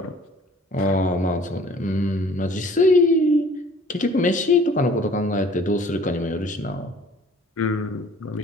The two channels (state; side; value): normal; both; correlation 0.52